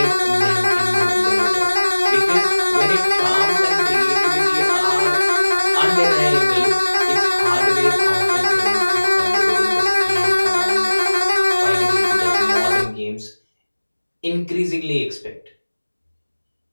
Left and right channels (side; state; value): both; inverted; correlation -1.00